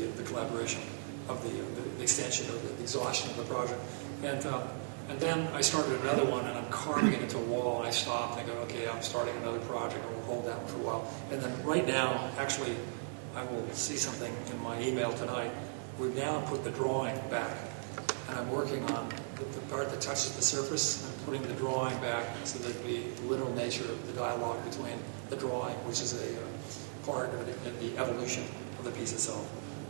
collaboration, of the extension, of the exhaustion of the project. And then I started another one, and I'm carving it into a wall, and I stopped, and I go, okay, I'm starting another project, and we'll hold that one for a while. And then right now, actually, I will see something in my email tonight. We've now put the drawing back, and I'm working on the part that touches the surface and putting the drawing back so there'd be the literal nature of the dialogue between the drawing, which is a part of the evolution of the piece itself.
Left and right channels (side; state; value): left; silent; digital silence